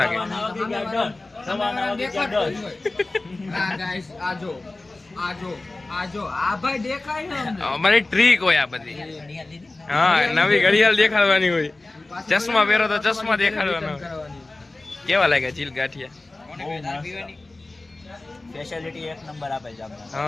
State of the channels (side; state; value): right; quieter; 3.0 dB